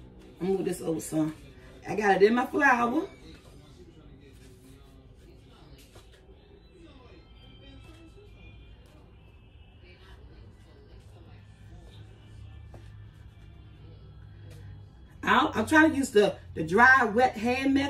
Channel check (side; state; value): both; identical; correlation 1.00